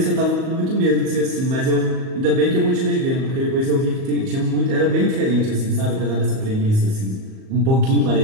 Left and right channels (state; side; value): late; left; 38 ms